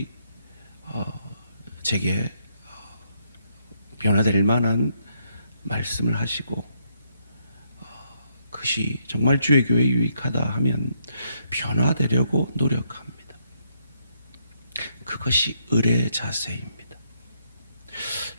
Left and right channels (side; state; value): both; inverted; correlation -0.75